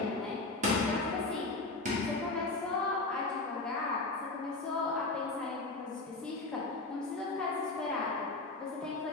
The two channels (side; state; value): right; quieter; 3.3 dB